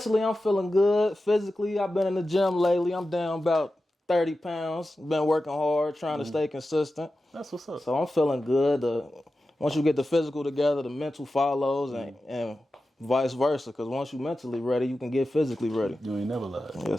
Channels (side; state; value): both; normal; correlation 0.93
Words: I'm feeling good. Physically, I've been in the gym lately. I'm down about 30 pounds. Been working hard, trying to stay consistent. That's what's up. So I'm feeling good. Once you get the physical together, the mental follows and vice versa. Because once you're mentally ready, you can get physically ready. You ain't never lied.